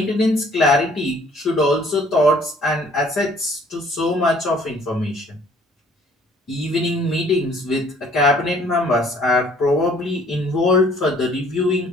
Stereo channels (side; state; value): both; normal; correlation 0.58